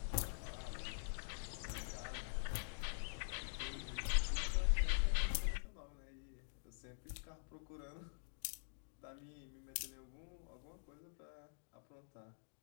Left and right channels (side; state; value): right; silent; digital silence